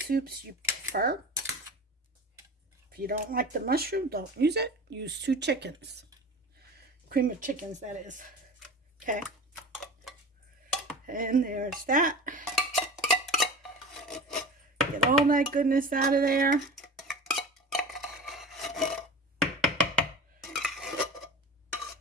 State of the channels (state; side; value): normal; both; correlation 0.34